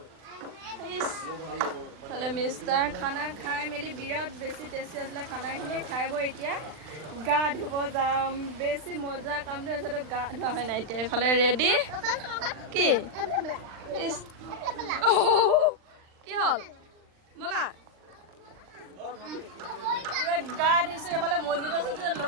তাহলে মিষ্টাৰ খানা খাই মেলি বিৰাট বেছি টেষ্টি আছিলে খানাখিনি। খাই বৈ এতিয়া গা ধুব যাম। বেছি মজা কামটো হৈছে, তো গা ধোৱা হয় নাই। এতিয়া এইফালে ৰেডি। কি কি হ'ল ব'লা গা ধুইছোঁ। এইফালে মছজিদ আছে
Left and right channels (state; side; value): late; left; 39 ms